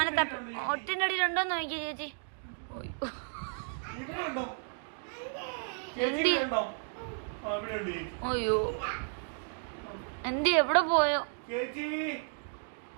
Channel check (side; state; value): left; silent; 56 dB below the other